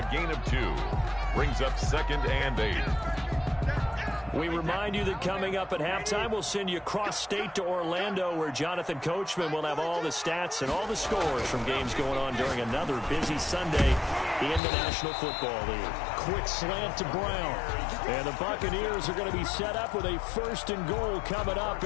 gain of 2 brings up 2nd and 8. We remind you that coming up at halftime, we'll send you cross-state to Orlando, where Jonathan Coachman will have all the stats and all the scores from games going on during another busy Sunday in the National Football League. Quick slant to Brown. And the Buccaneers are going to be set up with a 1st and goal coming up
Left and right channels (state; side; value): drops out; right; at 14.6 s